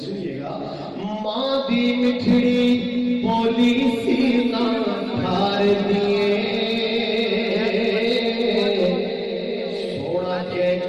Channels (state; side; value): identical; both; correlation 1.00